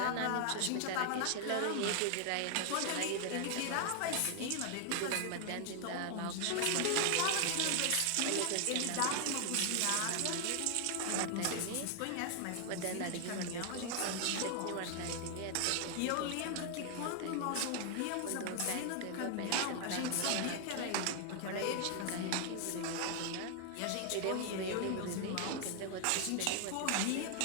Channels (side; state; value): both; different; correlation 0.00